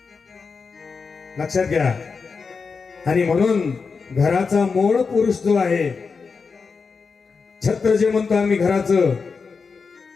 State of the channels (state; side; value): quieter; right; 5.0 dB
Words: लक्षात घ्या. आणि म्हणून घराचा मूळ पुरुष जो आहे, छत्र जे म्हणतो आम्ही घराचं,